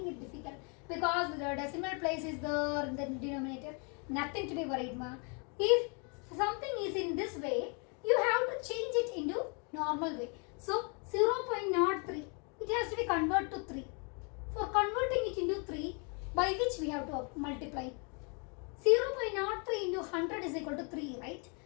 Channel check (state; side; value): quieter; right; 36.0 dB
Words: it difficult because the decimal place is there in the denominator. Nothing to be worried, ma. If something is in this way, you have to change it into normal way. So 0.03, it has to be converted to 3. For converting it into 3, by which we have to multiply? 0.03 into 100 is equal to 3, right?